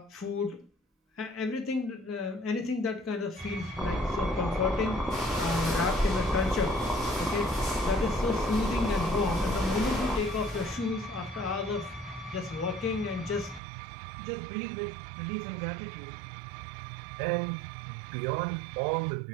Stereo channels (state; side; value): drops out; left; at 13.6 s